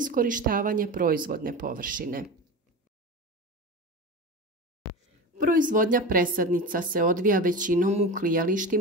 proizvodne površine. Proizvodnja presadnica se odvija većinom u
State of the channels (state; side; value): normal; both; correlation 0.27